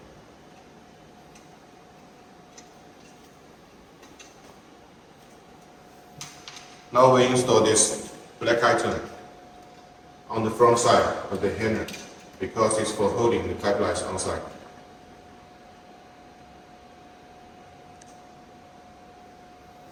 Now we install this black item on the front side of the handle because it's for holding the pipelines on site.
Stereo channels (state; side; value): identical; both; correlation 1.00